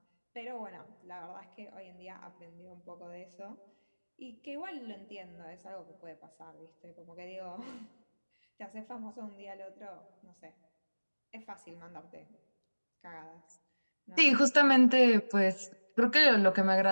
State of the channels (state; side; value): inverted; both; correlation -1.00